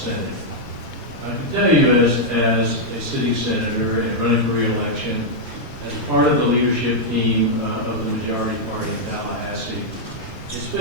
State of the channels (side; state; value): right; noise; rumble, 21 dB below the sound